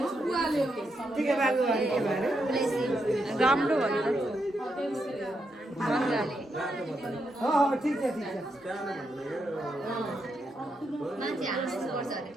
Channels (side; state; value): both; normal; correlation 0.82